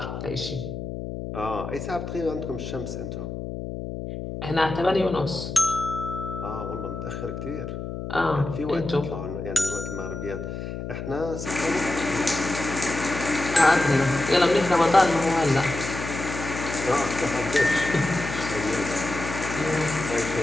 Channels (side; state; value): left; noise; hum, 7 dB below the sound